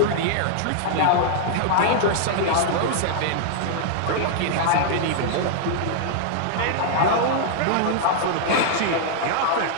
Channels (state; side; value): different; both; correlation -0.01